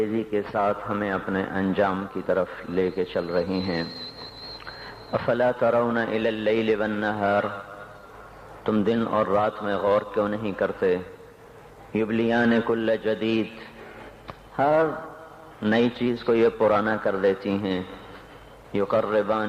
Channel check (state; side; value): identical; both; correlation 1.00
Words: کے ساتھ ہمیں اپنے انجام کی طرف لے کے چل رہی ہیں۔ افلا ترون الی اللیل والنہار، تم دن اور رات میں غور کیوں نہیں کرتے؟ یبلیان کل جدید، ہر نئی چیز کو یہ پرانا کر دیتی ہیں۔